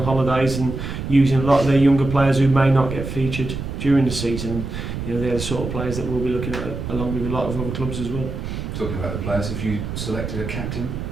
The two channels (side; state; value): right; noise; rumble, 6 dB below the sound